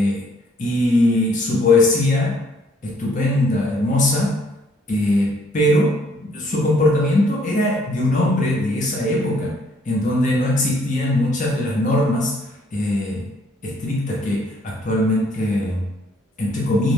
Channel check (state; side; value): normal; both; correlation 0.64